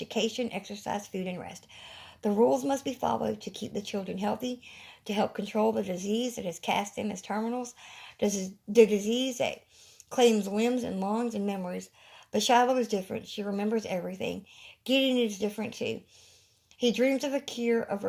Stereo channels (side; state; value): both; identical; correlation 1.00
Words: exercise, food, and rest. The rules must be followed to keep the children healthy, to help control the disease that has cast them as terminals, the disease that claims limbs and lungs and memories. But Shiloh is different. She remembers everything. Gideon is different too. He dreams of a cure, of